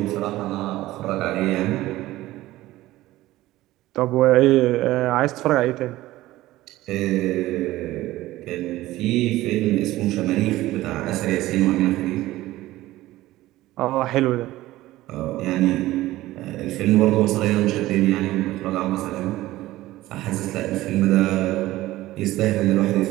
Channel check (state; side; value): quieter; left; 16.6 dB